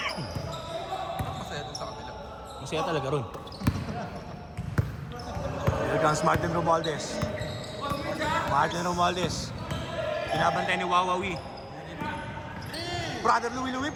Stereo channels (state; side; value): identical; both; correlation 1.00